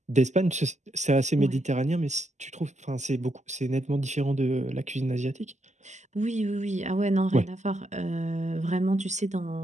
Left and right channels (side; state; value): left; late; 0.34 ms